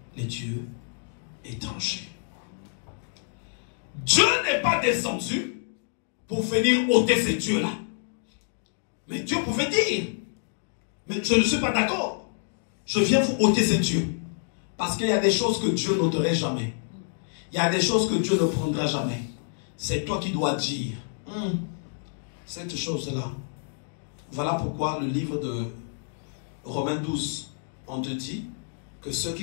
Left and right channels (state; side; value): silent; right; digital silence